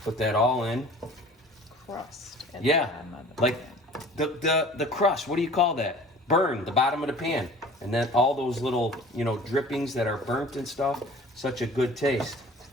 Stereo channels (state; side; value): normal; both; correlation 0.45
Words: Put that all in. Crust. At Yeah, the bottom of the like pan. the crust. What do you call that? Burn the bottom of the pan, and then all those little drippings that are burnt and stuff. Such a good taste.